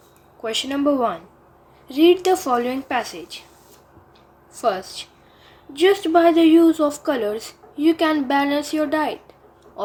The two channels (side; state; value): both; identical; correlation 1.00